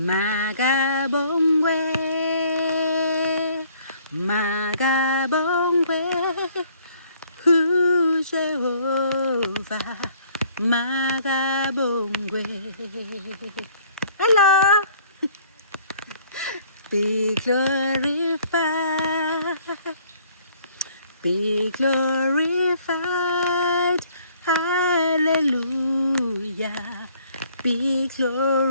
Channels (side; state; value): both; inverted; correlation -0.60